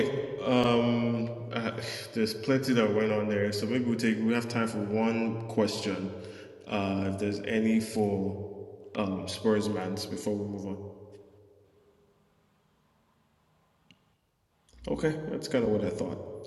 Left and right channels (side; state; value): both; identical; correlation 1.00